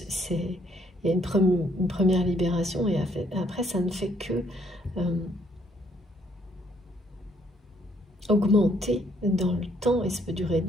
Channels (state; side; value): normal; both; correlation 0.67